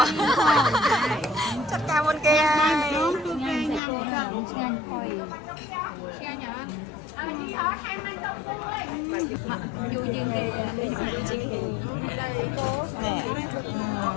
៎ចាត់ការមុនគេហើយញ៉ាំឆ្ងាញ់ហុយឆ្ងាញ់អត់យូរជាងគេ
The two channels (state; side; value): drops out; right; at 3.8 s